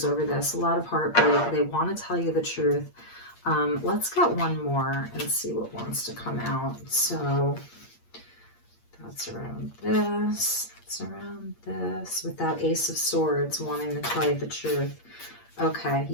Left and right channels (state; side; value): late; right; 8.6 ms